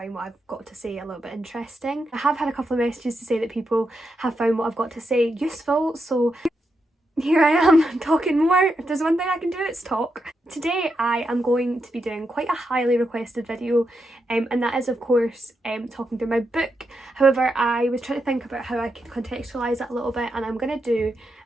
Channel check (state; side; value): normal; both; correlation 0.84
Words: what I've got to say a little bit interesting. I have had a couple of messages to say that people have found what I've got to say useful, so here I am talking more. If there's one thing I can do, it's talk. Today I am going to be doing quite a highly requested video, and that is of course talking through my book. However, I was trying to think about how I could contextualise that a little bit, and I'm going to do